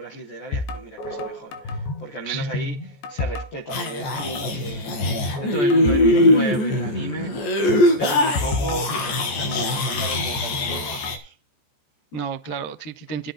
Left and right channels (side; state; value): right; late; 14 ms